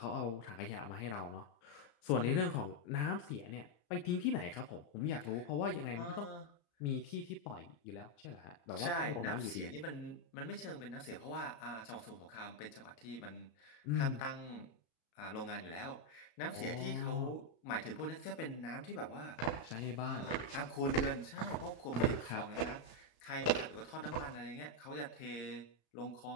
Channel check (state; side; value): late; right; 35 ms